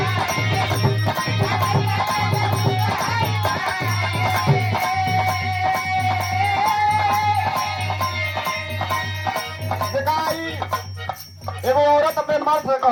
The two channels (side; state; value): both; identical; correlation 1.00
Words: दिखाई एगो औरत अपने मर्द से